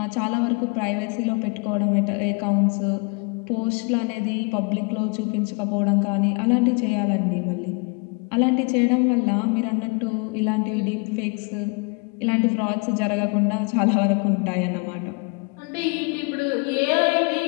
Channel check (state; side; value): quieter; right; 32.3 dB